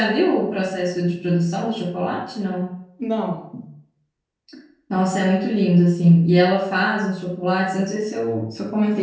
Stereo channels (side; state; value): both; identical; correlation 1.00